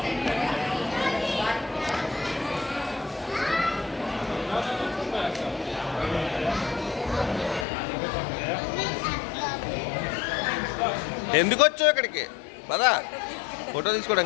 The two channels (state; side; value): drops out; right; at 7.7 s